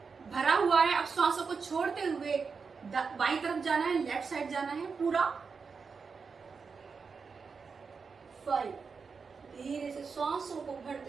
भरा हुआ है। अब श्वासों को छोड़ते हुए बाईं तरफ जाना है, लेफ्ट साइड जाना है पूरा। 5, धीरे से श्वासों को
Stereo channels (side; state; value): left; quieter; 5.3 dB